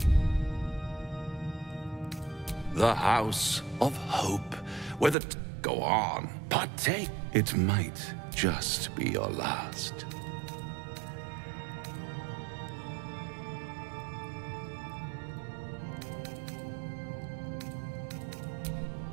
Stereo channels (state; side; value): drops out; left; at 5.2 s